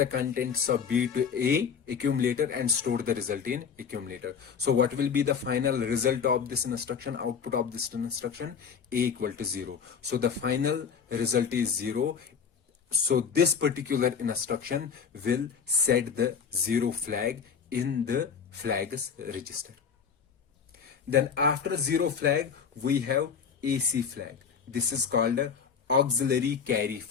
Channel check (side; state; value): right; quieter; 6.6 dB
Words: contents of b to a accumulator and store the result in accumulator. So what will be the final result of this instruction, output of this instruction? A equal to 0. So the final result is 0. So this particular instruction will set the 0 flag in the flags register. Then after 0 flag we have AC flag. This is called a auxiliary carry